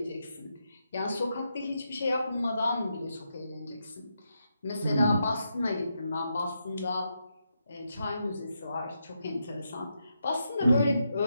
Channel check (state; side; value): inverted; both; correlation -0.83